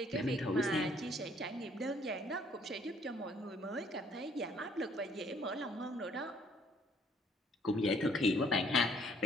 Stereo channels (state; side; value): normal; both; correlation 0.63